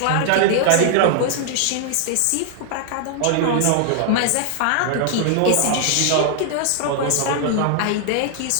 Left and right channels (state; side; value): different; both; correlation 0.00